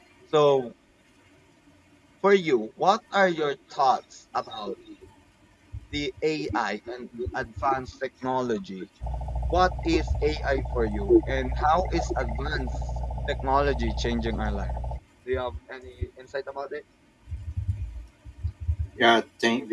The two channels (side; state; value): both; identical; correlation 1.00